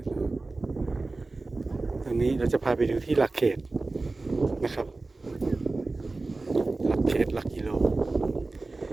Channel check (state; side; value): quieter; left; 3.4 dB